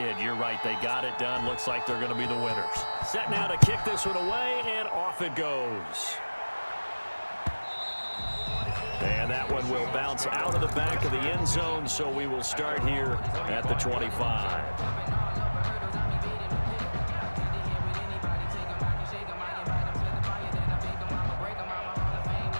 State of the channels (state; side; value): inverted; both; correlation -1.00